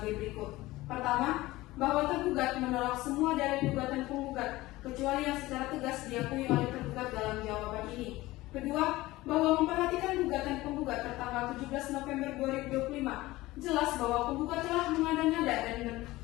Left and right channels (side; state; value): right; quieter; 18.6 dB